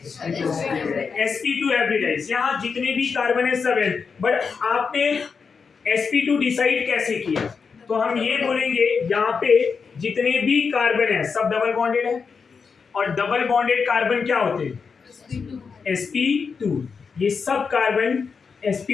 sp2 हाइब्रिडाइज, यहाँ जितने भी कार्बन है सब है, बट आपने sp2 डिसाइड कैसे किया, तो हम ये बोलेंगे यहाँ पे जितने भी कार्बन है सब डबल बॉन्डेड है, और डबल बॉन्डेड कार्बन क्या होते हैं sp2, ये सब कार्बन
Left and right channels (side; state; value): right; quieter; 5.5 dB